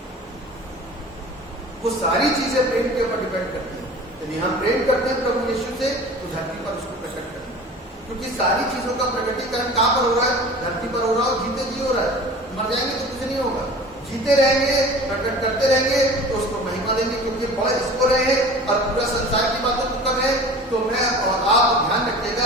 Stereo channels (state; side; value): normal; both; correlation 0.40